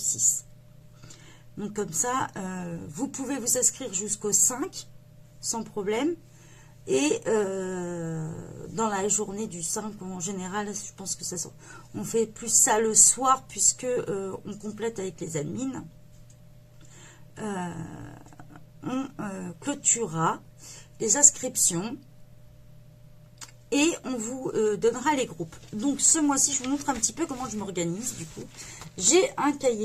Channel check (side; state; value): both; identical; correlation 1.00